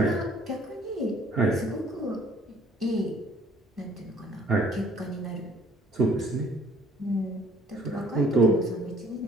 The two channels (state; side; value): normal; both; correlation 0.58